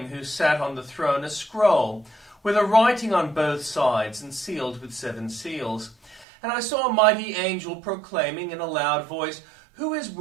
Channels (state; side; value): drops out; left; at 6.2 s